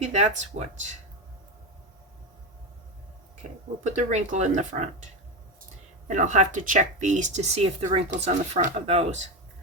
that's what. Okay, we'll put the wrinkle in the front. And I'll have to check these to see if the wrinkle's on the front of those.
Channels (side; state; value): both; normal; correlation 0.15